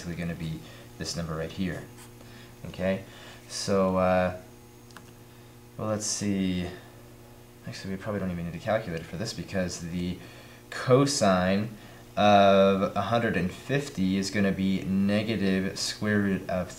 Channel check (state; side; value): identical; both; correlation 1.00